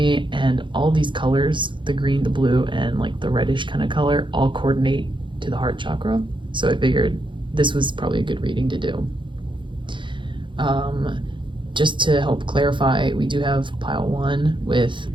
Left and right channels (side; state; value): left; late; 0.23 ms